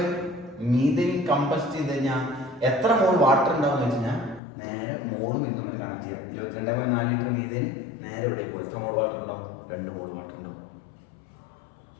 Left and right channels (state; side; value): drops out; right; at 4.4 s